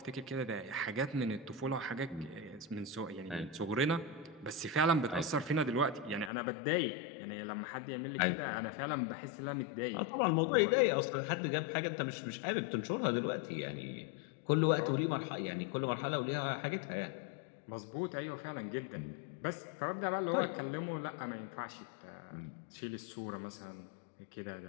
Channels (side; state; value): right; drops out; at 6.3 s